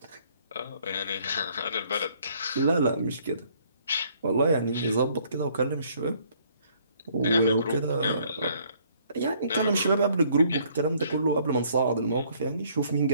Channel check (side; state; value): both; inverted; correlation -0.63